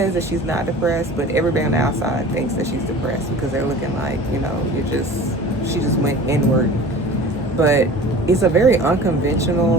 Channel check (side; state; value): both; normal; correlation 0.40